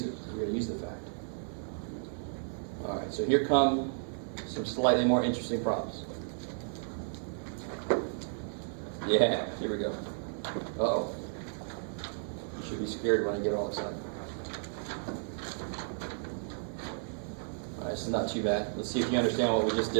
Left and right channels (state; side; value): silent; left; 56 dB below the other